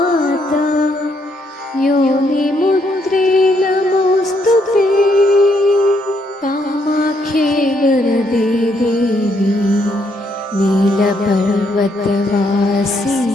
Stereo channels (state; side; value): normal; both; correlation 0.73